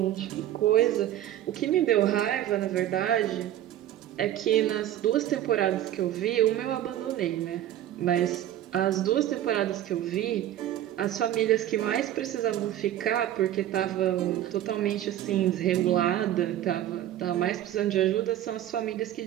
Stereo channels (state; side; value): quieter; left; 12.2 dB